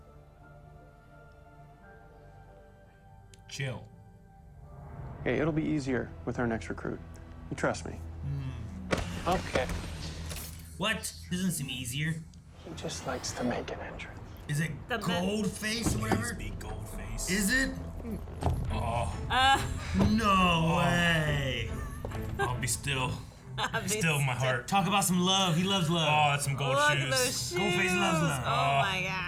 Chill. Hey, it'll be easier with our next recruit. You trust me. Okay. What? Doesn't seem easier. He just likes to make an entrance. Is it Goldface or whatever? Big Goldface. Is it? Oh. No way. I'll be still. Still in my heart. Talk about some love. He loves love. Oh, that's some gold Look shoes. at those shoes. Goldface loves love. Oh my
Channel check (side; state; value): both; identical; correlation 1.00